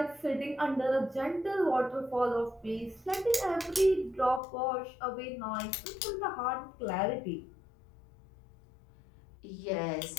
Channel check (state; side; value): drops out; right; at 4.4 s